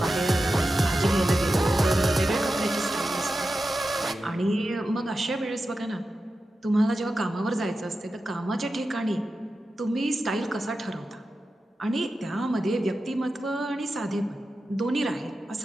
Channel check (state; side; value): normal; both; correlation 0.91